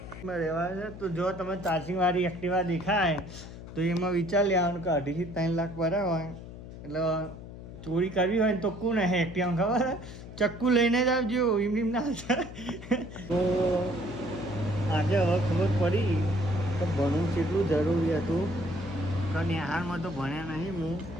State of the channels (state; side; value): noise; left; hum, 13 dB below the sound